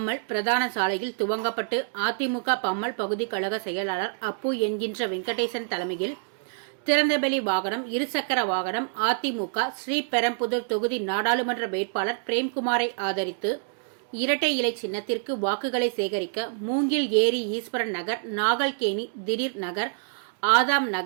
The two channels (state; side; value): silent; left; digital silence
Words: பிரதான சாலையில் துவங்கப்பட்டு அதிமுக பம்மல் பகுதி கழக செயலாளர் அப்பு என்கின்ற வெங்கடேசன் தலைமையில் திறந்தவெளி வாகனம், இருசக்கர வாகனம் அதிமுக ஸ்ரீபெரும்புதூர் தொகுதி நாடாளுமன்ற வேட்பாளர் பிரேம்குமாரை ஆதரித்து இரட்டை இலை சின்னத்திற்கு வாக்குகளை சேகரிக்க மூங்கில் ஏரி ஈஸ்வரன் நகர், நாகல்கேணி திடீர் நகர், ஆதாம்